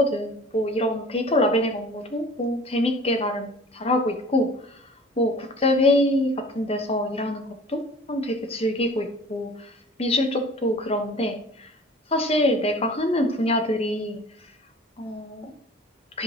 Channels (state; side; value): normal; both; correlation 0.45